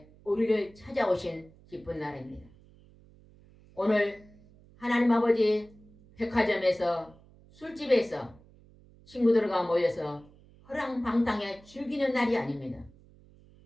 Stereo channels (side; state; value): right; noise; hum, 26 dB below the sound